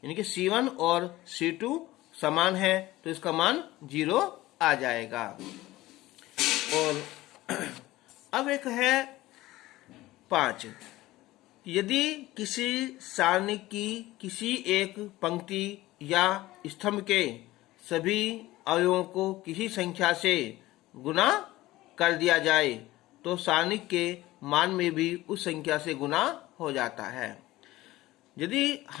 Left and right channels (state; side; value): quieter; right; 17.4 dB